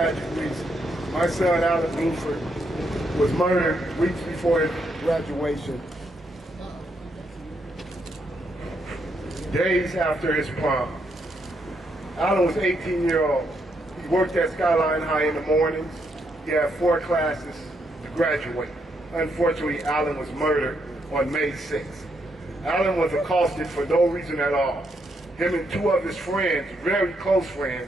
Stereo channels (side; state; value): both; normal; correlation 0.77